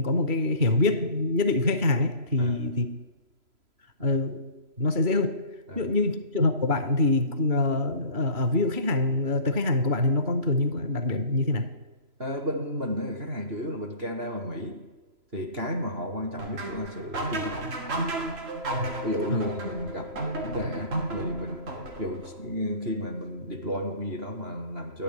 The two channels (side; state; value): left; late; 3.0 ms